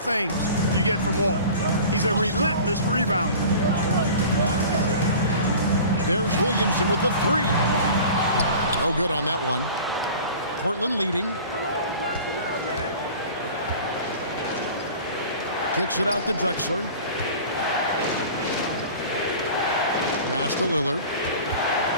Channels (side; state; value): both; inverted; correlation -0.41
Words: you get from Walton. He's a relentless rebounder. There's Williamson with the 3. No good on that one. Portland leading. Kicks it out to Drexler. Pass to Lillard.